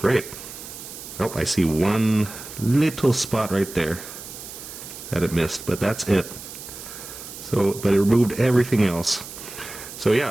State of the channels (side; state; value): right; noise; hiss, 13 dB below the sound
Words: great. Oh, I see one little spot right there that it missed, but that's it. So, but it removed everything else. So